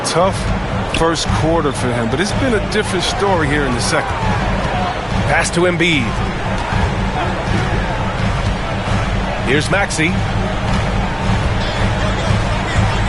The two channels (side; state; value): both; identical; correlation 1.00